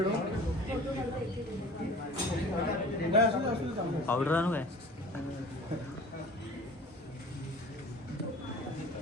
पावडर आणू काय?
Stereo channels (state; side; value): normal; both; correlation 0.44